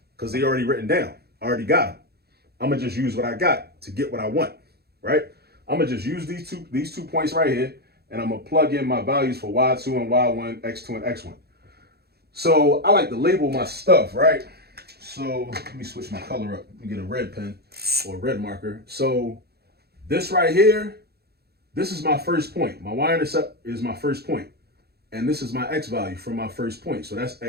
Because they already written down. I already got them. I'm going to just use what I got to get what I want, right? I'm going to just use these two points right here, and I'm going to plug in my values for y2 and y1, x2 and x1. So I like to label my stuff, right? So let me switch my color up. Let me get a red pen or a red marker. So this right here, this is my first point. My y-intercept is my first point. And this is my x value from my first point. So that's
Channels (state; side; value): late; left; 0.46 ms